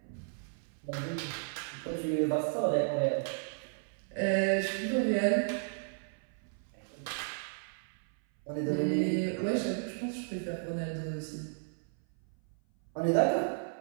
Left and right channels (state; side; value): silent; left; 55 dB below the other